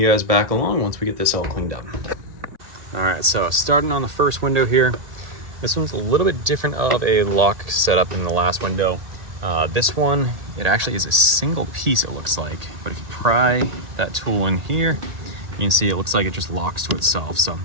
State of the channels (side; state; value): left; late; 1.8 ms